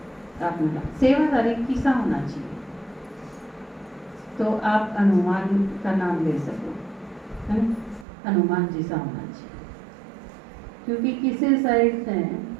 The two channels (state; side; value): drops out; left; at 8.1 s